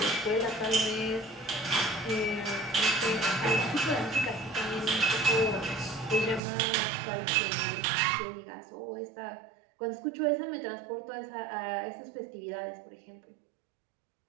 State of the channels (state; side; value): drops out; left; at 6.4 s